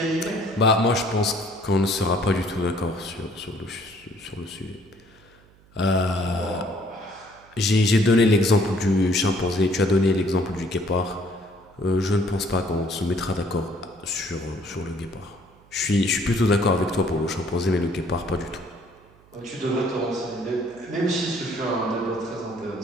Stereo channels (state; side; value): noise; right; hum, 28 dB below the sound